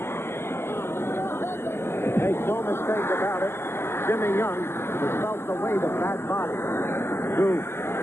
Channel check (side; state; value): right; late; 0.12 ms